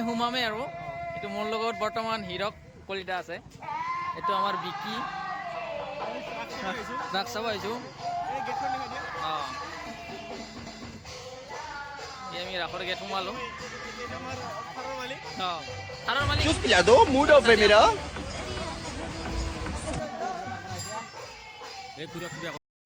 সোমামেই আৰু এইটো মোৰ লগত বৰ্তমান হীৰক কলিতা আছে এইটো আমাৰ বিকি ৰাস চাব আহিছোঁ অঁ আমি ৰাসৰ গেট সোমালোঁ অঁ থাৰৰ মালিক चुप पिला दो मूड ऑफ है मेरा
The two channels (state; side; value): identical; both; correlation 1.00